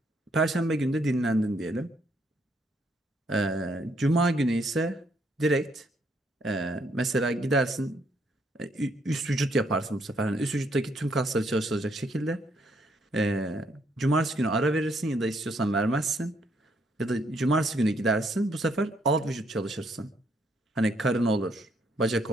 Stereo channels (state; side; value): normal; both; correlation 0.71